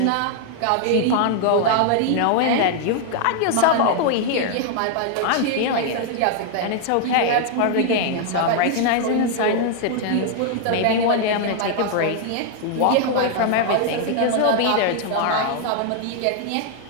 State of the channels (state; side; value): different; both; correlation 0.00